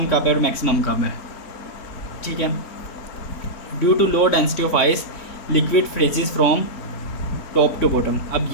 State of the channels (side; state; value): right; late; 3.6 ms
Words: कब है और मैक्सिमम कब है। ठीक है। Due to low density of ice liquid freezes from top to bottom. अब